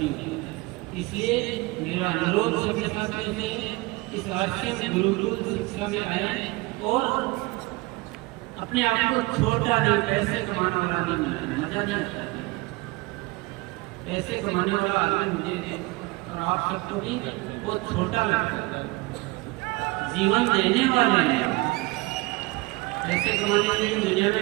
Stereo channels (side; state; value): left; quieter; 23.3 dB